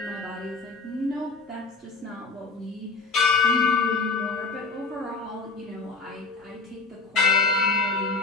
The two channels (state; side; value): quieter; right; 4.0 dB